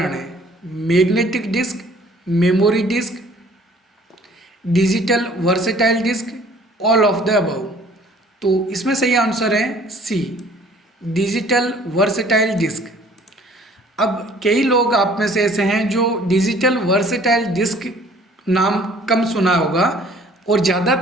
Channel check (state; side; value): normal; both; correlation 0.54